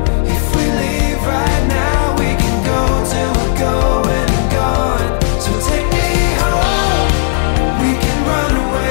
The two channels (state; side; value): silent; right; digital silence